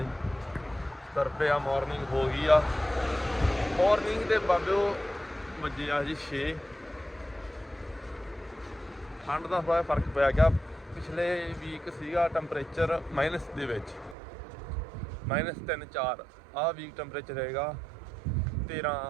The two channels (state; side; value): drops out; left; at 14.2 s